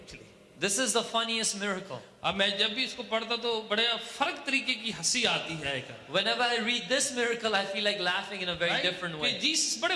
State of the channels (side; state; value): both; identical; correlation 1.00